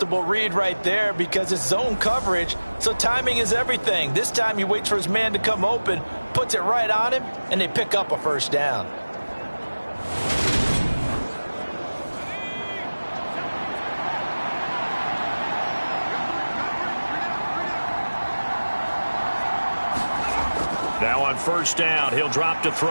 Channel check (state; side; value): inverted; both; correlation -1.00